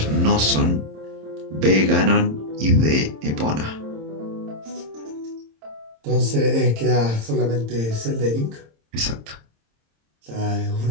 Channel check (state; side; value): late; left; 26 ms